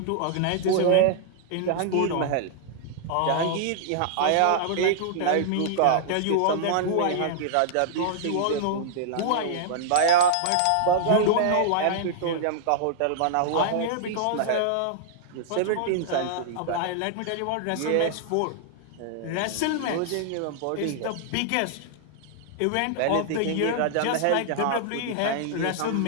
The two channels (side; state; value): both; different; correlation -0.01